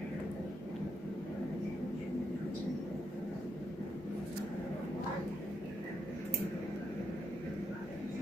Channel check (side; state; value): both; normal; correlation 0.79